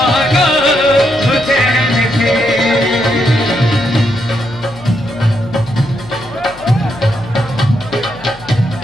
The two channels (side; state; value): left; noise; hum, 20 dB below the sound